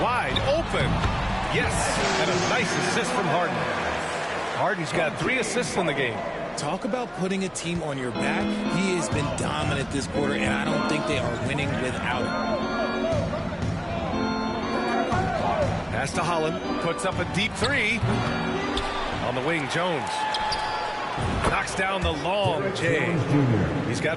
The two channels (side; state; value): both; identical; correlation 1.00